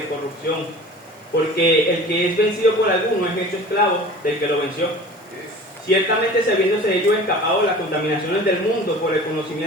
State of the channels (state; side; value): normal; both; correlation 0.41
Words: corrupción, porque el que es vencido por alguno es hecho esclavo del que lo venció. Ciertamente, sabiéndose ellos escapados las contaminaciones del mundo por el